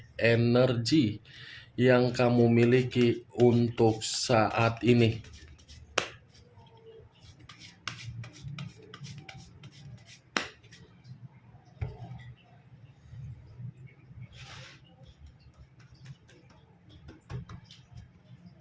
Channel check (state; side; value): identical; both; correlation 1.00